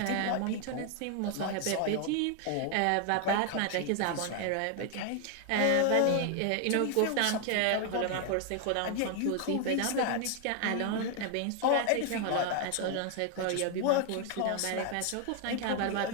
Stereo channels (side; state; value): both; different; correlation 0.00